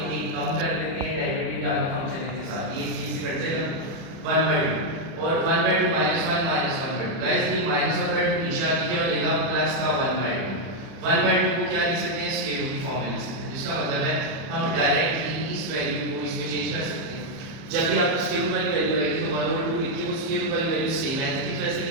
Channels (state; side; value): late; left; 30 ms